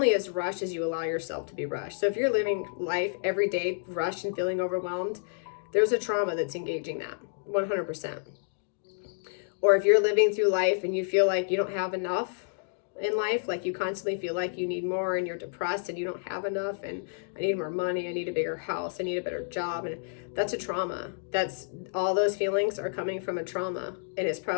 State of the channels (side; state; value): right; silent; digital silence